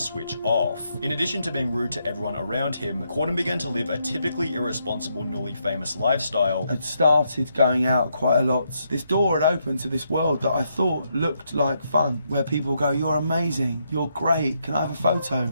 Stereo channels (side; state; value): both; inverted; correlation -0.78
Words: switch off. In addition to being rude to everyone around him, Corden began to live a typically irresponsible, newly famous lifestyle. I'd started going out quite a lot. This door had opened to this world that I thought looked like fun, where people go, "You're amazing, you're great, can I have a photo?